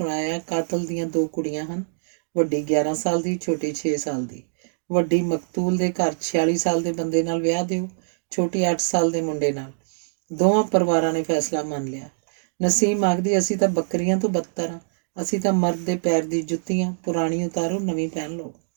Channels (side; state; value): left; silent; digital silence